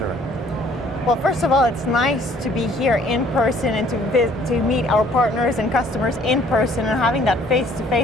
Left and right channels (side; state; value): both; normal; correlation 0.59